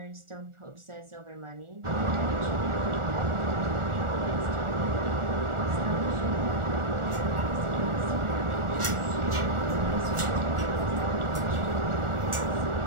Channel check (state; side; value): late; left; 1.4 ms